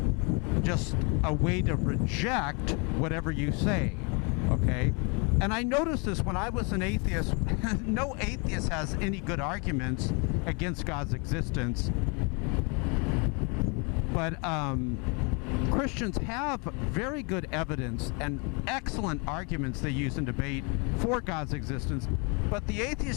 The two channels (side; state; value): right; quieter; 33.2 dB